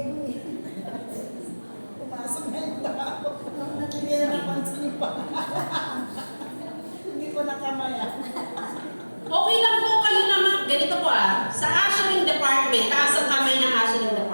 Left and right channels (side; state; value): both; inverted; correlation -1.00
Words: Okay lang po kayo naman. Ganito po sa ushering department, taas ang kamay ng ushering